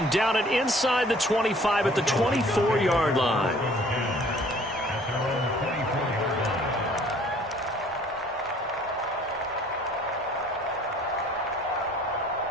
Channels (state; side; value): normal; both; correlation 0.55